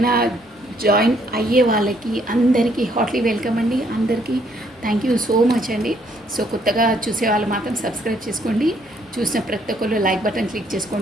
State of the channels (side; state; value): both; normal; correlation 0.67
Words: జాయిన్ అయ్యే వాళ్ళకి అందరికీ హాట్లీ వెల్కమ్ అండి. అందరికీ థ్యాంక్ యూ సో మచ్ అండి. సో కొత్తగా చూసే వాళ్ళు మాత్రం సబ్స్క్రైబ్ చేసుకోండి. చూసిన ప్రతి ఒక్కరు లైక్ బటన్ క్లిక్